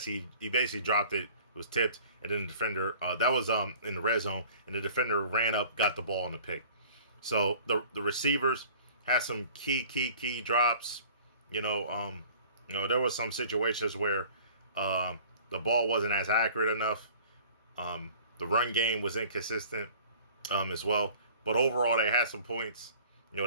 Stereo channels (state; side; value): inverted; both; correlation -0.48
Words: He basically dropped it. It was tipped, and then the defender, that was in the red zone, and the defender ran up, got the ball in the pick. So the receivers had some key drops. There was some situations where the ball wasn't as accurate enough. The run game was inconsistent as well. But overall, they had some points.